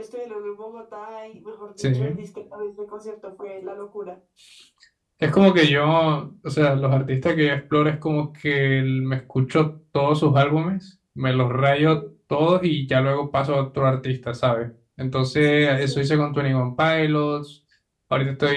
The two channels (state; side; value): identical; both; correlation 1.00